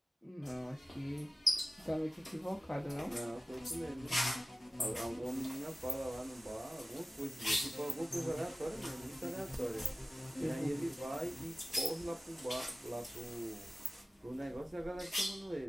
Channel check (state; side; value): normal; both; correlation 0.97